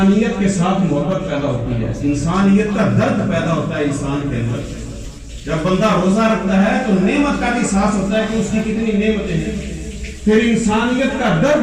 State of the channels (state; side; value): identical; both; correlation 1.00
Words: کے ساتھ محبت پیدا ہوتی ہے، انسانیت کا درد پیدا ہوتا ہے انسان کے اندر۔ جب بندہ روزہ رکھتا ہے تو نعمت کا بھی احساس ہوتا ہے کہ اس کی کتنی نعمتیں ہیں، پھر انسانیت کا